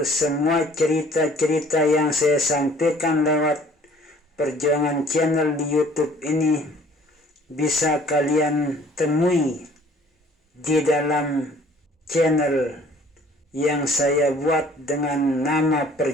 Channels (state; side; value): normal; both; correlation 0.55